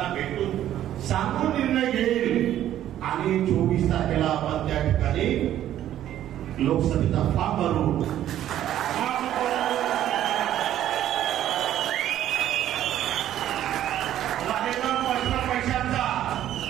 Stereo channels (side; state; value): left; quieter; 12.0 dB